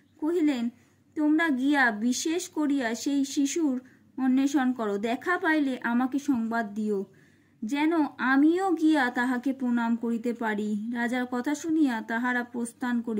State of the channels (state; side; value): identical; both; correlation 1.00